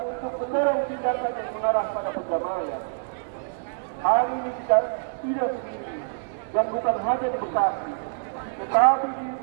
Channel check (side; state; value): left; silent; digital silence